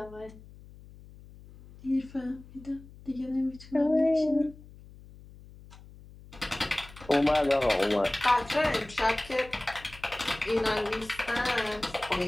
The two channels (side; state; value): left; noise; hum, 20 dB below the sound